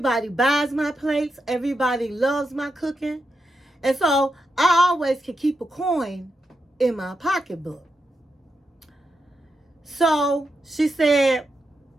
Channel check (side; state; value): both; normal; correlation 0.86